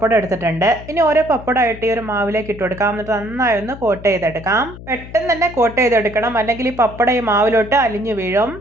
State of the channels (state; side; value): noise; left; hum, 15 dB below the sound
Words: എടുത്തിട്ടുണ്ട്. ഇനി ഓരോ പപ്പടമായിട്ട് ഈ ഒരു മാവിലേക്ക് ഇട്ട് കൊടുക്കാം. എന്നിട്ട് നന്നായി ഒന്ന് കോട്ട് ചെയ്തെടുക്കാം. പെട്ടെന്ന് തന്നെ കോട്ട് ചെയ്തെടുക്കണം, അല്ലെങ്കിൽ ഈ പപ്പടം ഈ മാവിലോട്ട് അലിഞ്ഞു വീഴും.